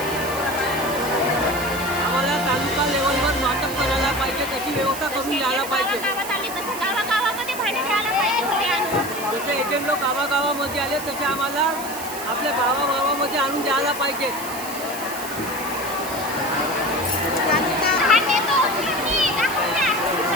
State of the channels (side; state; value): right; noise; hiss, 10 dB below the sound